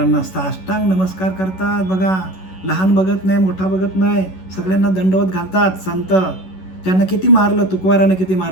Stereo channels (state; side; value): late; right; 11 ms